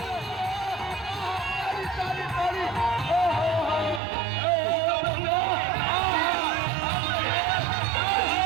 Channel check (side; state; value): left; drops out; at 4.0 s